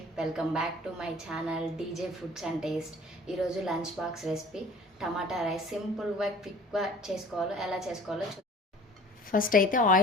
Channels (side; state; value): both; normal; correlation 0.47